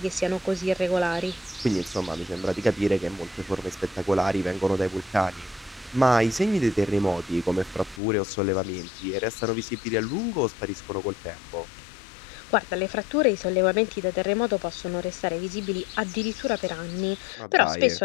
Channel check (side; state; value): right; drops out; at 8.0 s